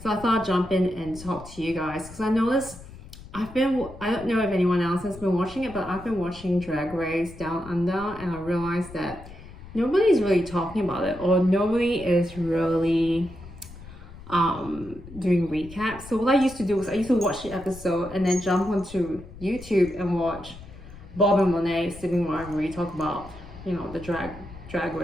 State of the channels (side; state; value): left; noise; rumble, 16 dB below the sound